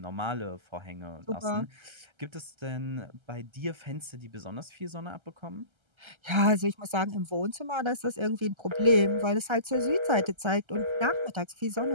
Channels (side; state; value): left; late; 1.3 ms